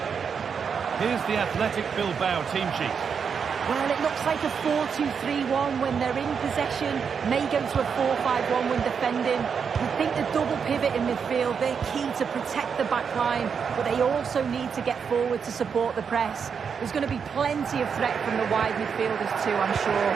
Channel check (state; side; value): quieter; left; 6.5 dB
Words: Here's the Athletic Bilbao team sheet. Well, it looks like a 4-2-3-1 when they're in possession, may go to a 4-5-1 when defending. I think the double pivot in midfield, they're key to protect the back line, but they also need to get forward to support the press. There's going to be plenty of threat from the wide midfielders too, I'm sure.